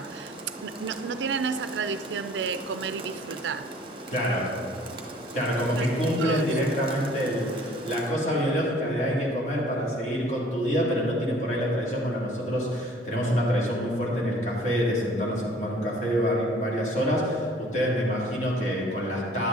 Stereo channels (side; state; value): both; normal; correlation 0.53